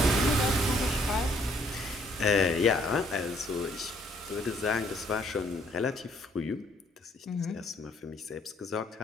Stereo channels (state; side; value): normal; both; correlation 0.65